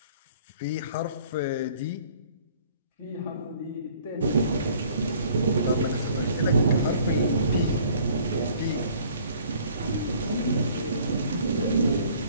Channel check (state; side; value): inverted; both; correlation -0.55